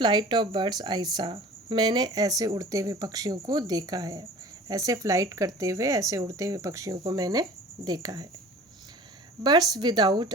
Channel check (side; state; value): both; normal; correlation 0.43